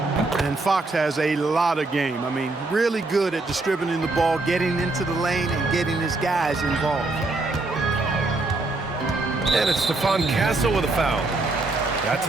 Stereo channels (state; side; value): quieter; left; 3.2 dB